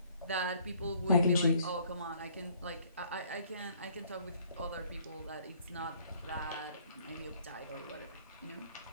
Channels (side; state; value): both; inverted; correlation -0.60